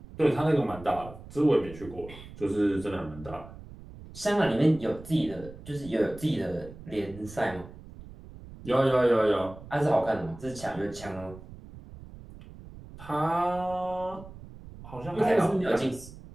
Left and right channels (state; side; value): noise; right; rumble, 16 dB below the sound